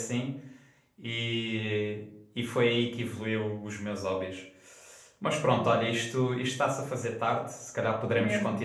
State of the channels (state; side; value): identical; both; correlation 1.00